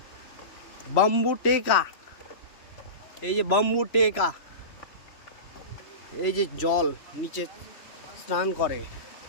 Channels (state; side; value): late; right; 3.1 ms